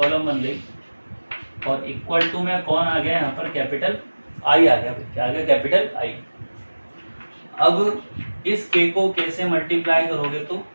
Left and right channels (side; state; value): both; inverted; correlation -1.00